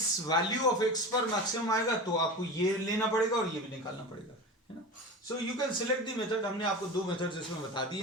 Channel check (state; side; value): normal; both; correlation 0.30